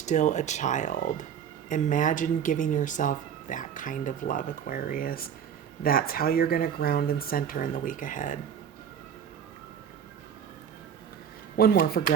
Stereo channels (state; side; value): quieter; left; 8.3 dB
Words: a child. Imagine giving yourself that kind of love, Aquarius. That's how you're going to ground and center in the week ahead. One more for